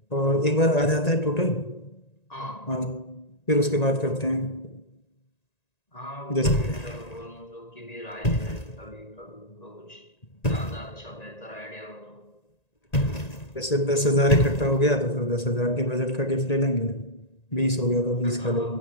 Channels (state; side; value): late; right; 1.9 ms